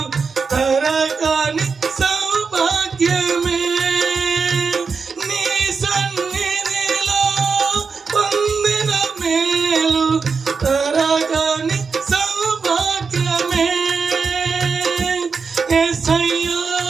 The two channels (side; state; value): left; quieter; 5.1 dB